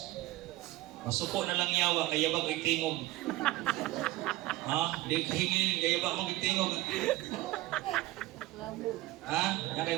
Masuko na lang yawa, kaya bag tingog. Ha? Di kahingin, kaya bag magtingog. Ha? Yan kayo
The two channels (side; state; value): left; quieter; 17.7 dB